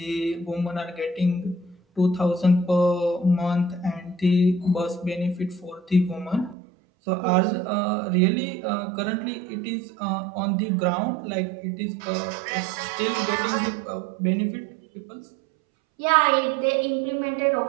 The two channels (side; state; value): left; drops out; at 6.6 s